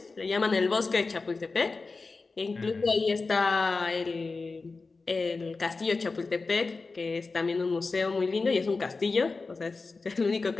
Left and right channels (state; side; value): quieter; right; 4.0 dB